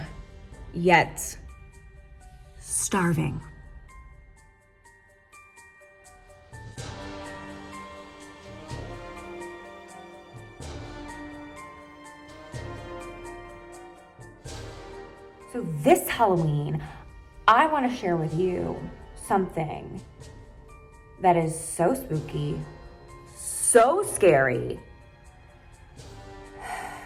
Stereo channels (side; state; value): both; identical; correlation 1.00